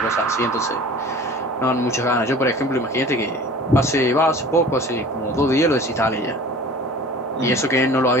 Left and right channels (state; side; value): normal; both; correlation 0.43